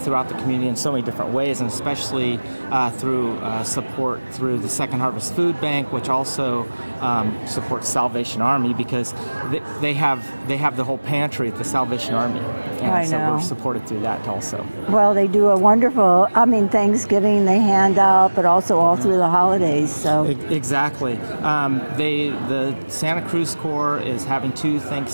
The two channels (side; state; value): both; inverted; correlation -1.00